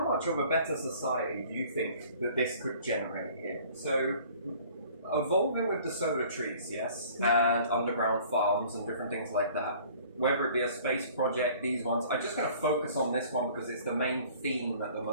much of a better society do you think that this could generate here? So evolving with the solar trees, yes, and underground farms and different things like that. Whether it be a space project, these ones, I'm just going to focus on this one because it's the main theme at the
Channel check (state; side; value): inverted; both; correlation -0.51